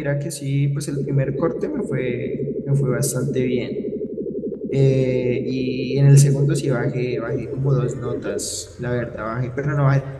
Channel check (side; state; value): both; identical; correlation 1.00